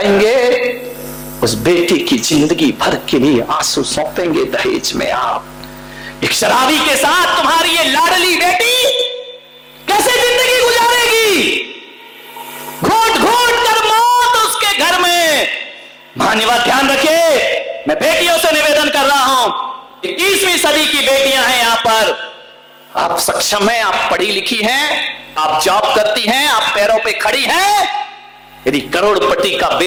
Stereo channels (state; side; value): identical; both; correlation 1.00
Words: उस बेटी की जिंदगी भर के लिए आंसू सौंपेंगे दहेज में आप। एक शराबी के साथ तुम्हारी ये लाडली बेटी कैसे जिंदगी गुजारेगी? घोट घोट कर मौत उसके घर में। मान्यवर ध्यान रखिए, मैं बेटियों से निवेदन कर रहा हूं, 21वीं सदी की बेटियां हैं यहां पर। आप सक्षम हैं, आप पढ़ी लिखी हैं, आप जॉब करती हैं, आप पैरों पे खड़ी हैं। यदि करोड़पति का